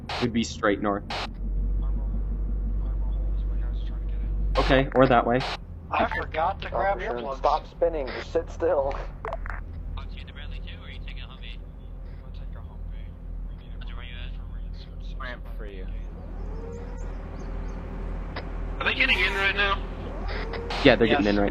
Would be straight north. Okay, or that way. I forgot to grab earplugs. Stop spinning, just sit still. For you. Are they getting in right now? Yeah, they're getting in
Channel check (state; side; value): identical; both; correlation 1.00